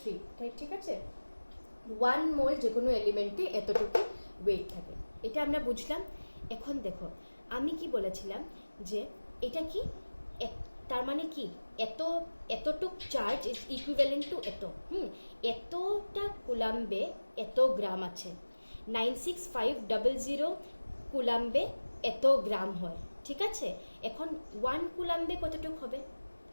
তাই ঠিক আছে। 1 মোল যে কোনো এলিমেন্টে এতটুকু ওয়েট থাকে, এটা আমরা বুঝলাম। এখন দেখো আমি কি বলেছিলাম যে এটা কি, তার মানে কি এতটুক চার্জ ইজ ইকুইভ্যালেন্ট টু এতটা কুলাম্বে এত গ্রাম আছে। 96500 কুলাম্বে এত গ্রাম হয়, ঠিক আছে। এখন 1 কুলাম্বে কতটুক হবে?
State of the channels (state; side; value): inverted; both; correlation -1.00